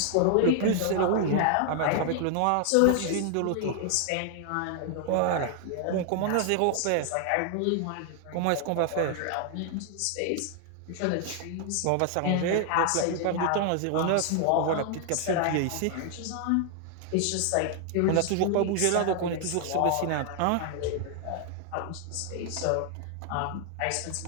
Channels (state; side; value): different; both; correlation 0.00